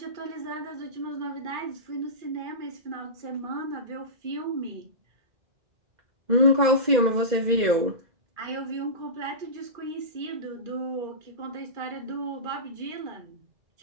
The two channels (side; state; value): left; late; 2.0 ms